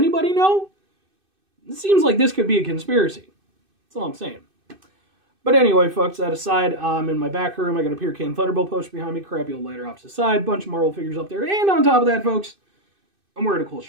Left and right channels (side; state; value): left; late; 2.6 ms